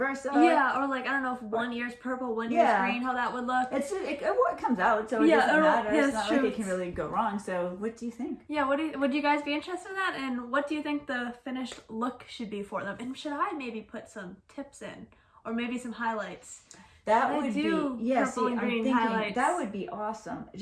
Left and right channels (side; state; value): both; identical; correlation 1.00